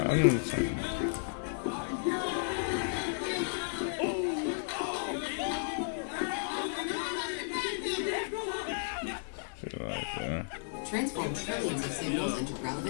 Transform trillions of signals into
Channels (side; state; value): right; silent; digital silence